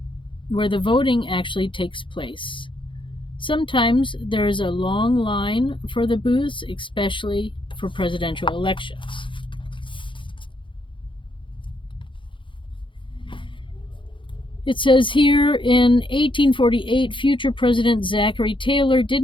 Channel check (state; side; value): late; right; 0.24 ms